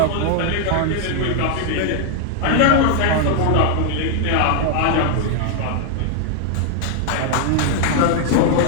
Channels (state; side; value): different; both; correlation 0.00